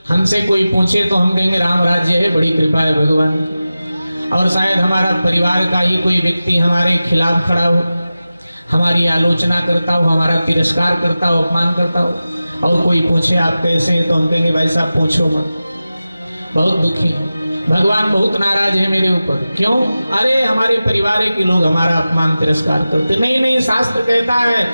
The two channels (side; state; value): both; inverted; correlation -0.95